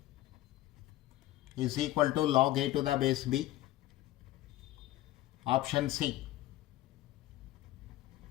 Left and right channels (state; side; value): quieter; right; 15.7 dB